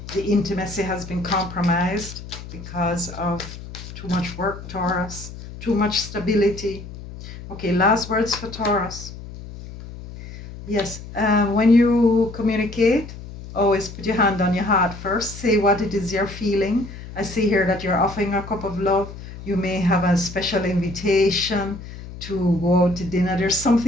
intimacy has been compromised because of too much work, Taurus, too much stability. Okay, last words for Taurus. Yes, when you communicate, always put your hand on your heart first. Say what it is you're feeling. I see here that you're offering a cup of love. You may have a special invitation to go out to dinner. There's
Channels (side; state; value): left; noise; hum, 13 dB below the sound